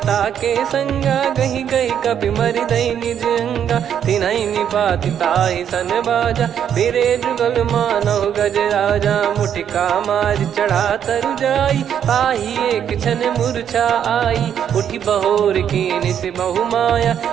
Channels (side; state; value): left; quieter; 9.0 dB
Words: के संगा, गही गही कपि मरि दई निज अंगा। तिन्हि निपाति ताहि सन बाजा, फिरे जुगल मानव गज राजा। मुटिका मार चढ़ा तरु जाई, पाही एक क्षण मूर्छा आई। उठी बहोर कीन से बहु माया,